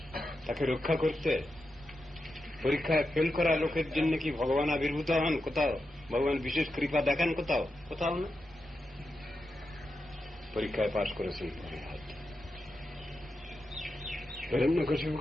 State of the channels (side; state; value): both; normal; correlation 0.88